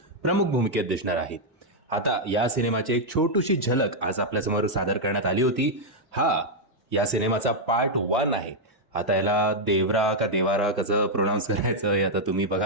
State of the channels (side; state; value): both; normal; correlation -0.02